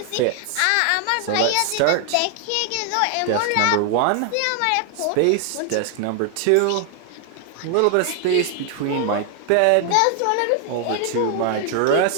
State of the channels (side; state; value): both; different; correlation 0.00